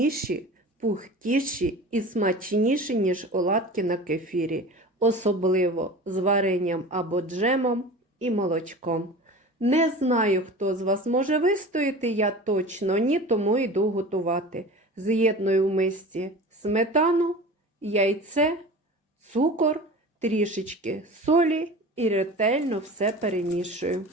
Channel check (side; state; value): both; normal; correlation 0.36